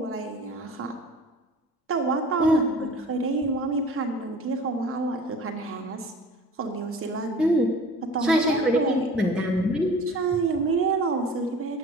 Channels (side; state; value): both; normal; correlation 0.43